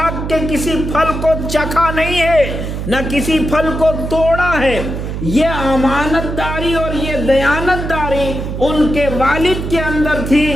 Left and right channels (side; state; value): right; noise; hum, 5 dB below the sound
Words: کے کسی پھل کو چکھا نہیں ہے، نہ کسی پھل کو توڑا ہے۔ یہ امانت داری اور یہ دیانت داری ان کے والد کے اندر تھی۔